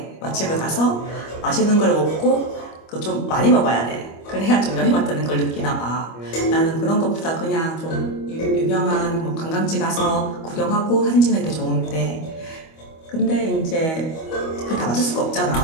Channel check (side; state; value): right; late; 25 ms